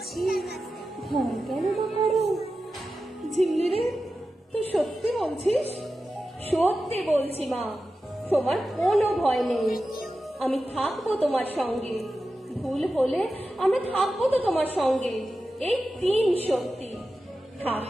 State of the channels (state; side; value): normal; both; correlation 0.92